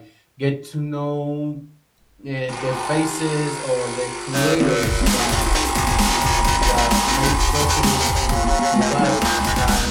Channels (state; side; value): identical; both; correlation 1.00